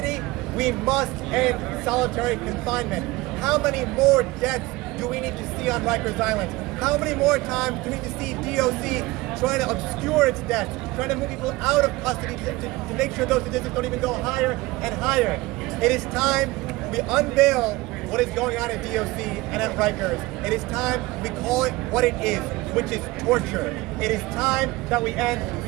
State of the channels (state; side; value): quieter; left; 20.7 dB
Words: we must end solitary confinement. How many more deaths do we need to see on Rikers Island? How many more times do we need to see DOC trying to obscure its deaths, trying to move people out of custody to make sure those statistics don't even go higher and higher? It is time we unveil what is going on at DOC and at Rikers. It is time we call it what it is, which is torture. It is time that we end